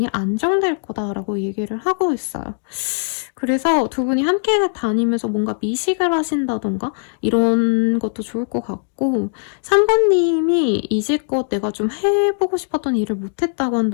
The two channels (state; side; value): silent; right; digital silence